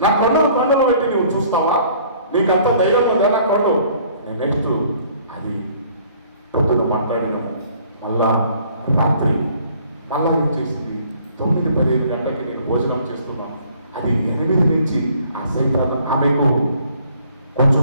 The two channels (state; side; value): inverted; both; correlation -0.58